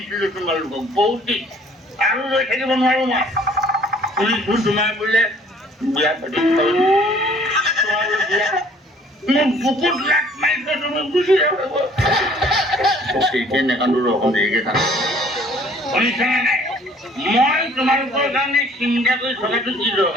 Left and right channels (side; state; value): both; normal; correlation 0.56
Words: তোমালোকক বহুত দিন আৰু ৰৈ থাকিব নোৱাৰো মই শুনিছোঁ তোমাৰ বোলে বিয়া পাতি মোক বুকুত লাট মাৰিছে তুমি গুচি যাব নেকান্দো ৰকম দেৰিকে থাক শুনিছানে নাই মই তোমালোকৰ কাৰণে চিন্তা কৰি থকাটো কি